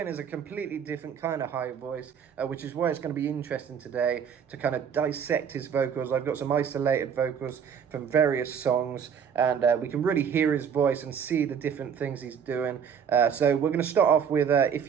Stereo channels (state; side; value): quieter; left; 7.5 dB